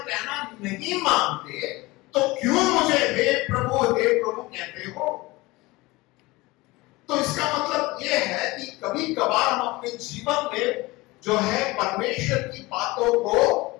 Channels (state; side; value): quieter; right; 21.7 dB